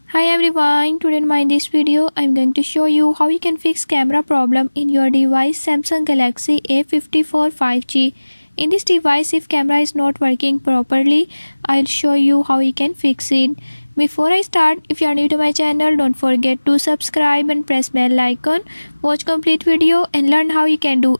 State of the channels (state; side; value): inverted; both; correlation -1.00